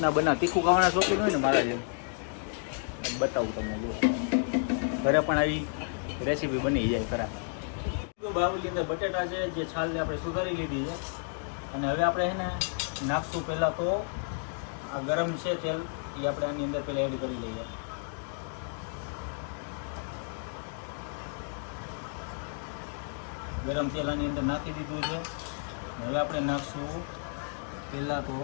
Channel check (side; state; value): right; silent; 57 dB below the other